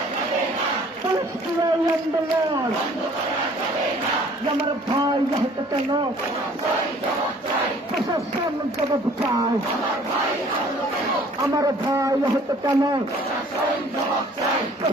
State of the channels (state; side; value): normal; both; correlation 0.54